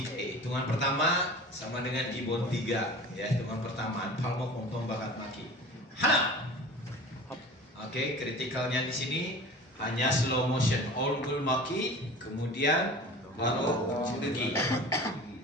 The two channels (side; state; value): both; normal; correlation 0.39